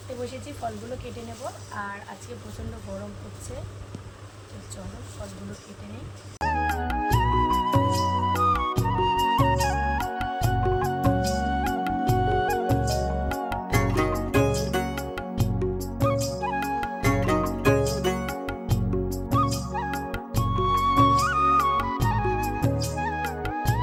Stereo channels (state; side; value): identical; both; correlation 1.00